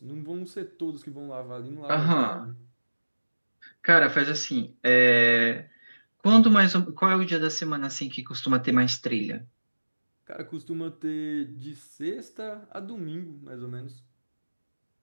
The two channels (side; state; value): both; inverted; correlation -1.00